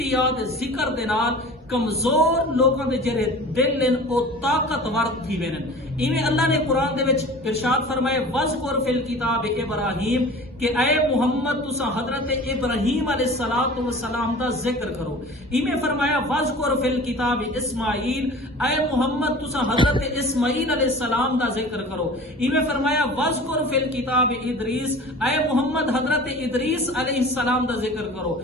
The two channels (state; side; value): normal; both; correlation 0.40